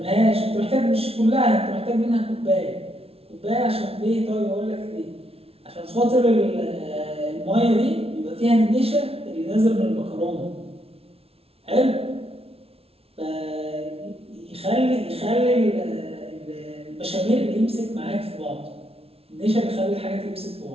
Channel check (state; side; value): late; left; 0.29 ms